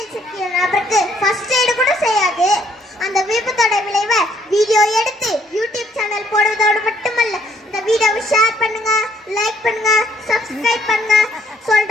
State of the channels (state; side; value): normal; both; correlation 0.66